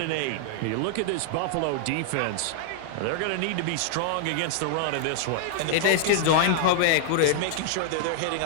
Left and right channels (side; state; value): both; different; correlation -0.01